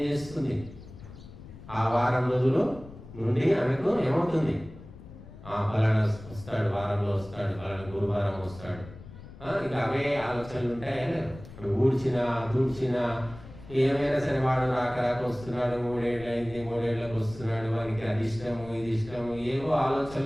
చేస్తుంది? ఆ వారం రోజులు నుండి ఆమెకు ఏమవుతుంది? ఫలానా వస్తాడు, వారంలో వస్తాడు, ఫలానా గురువారం వస్తాడు. ఇక అవే ఆలోచనలు ఉంటాయా? ఇప్పుడు దూడ్చినా ఏమైనా సరే వాడు రాక వస్తున్నాడు, 3 ఏళ్ళు అయింది, 3 ఏళ్ళకి వస్తున్నాడు, వానికి అది ఇష్టము, ఇది ఇష్టము, ఏవో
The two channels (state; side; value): noise; left; rumble, 17 dB below the sound